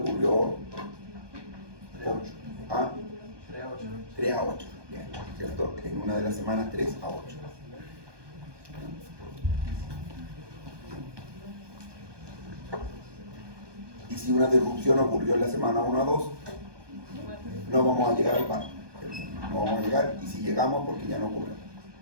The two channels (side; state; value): left; late; 1.2 ms